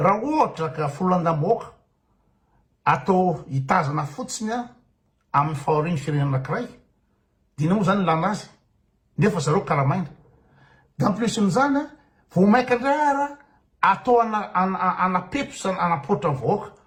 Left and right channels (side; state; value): both; identical; correlation 1.00